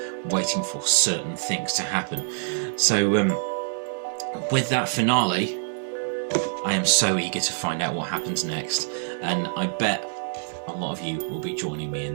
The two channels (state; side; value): silent; left; digital silence